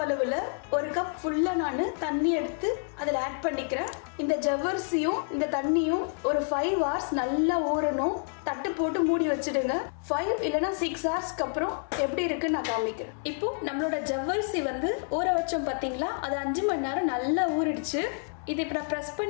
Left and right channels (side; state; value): right; silent; 59 dB below the other